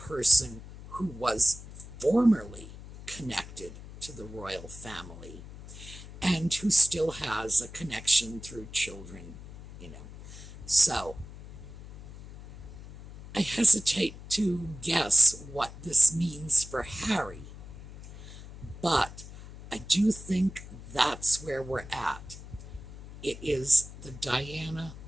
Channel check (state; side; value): noise; left; hum, 15 dB below the sound